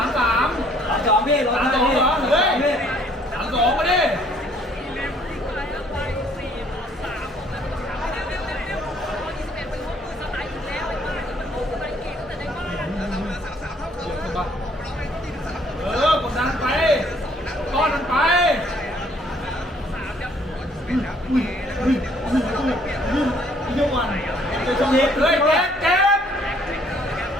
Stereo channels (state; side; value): normal; both; correlation 0.62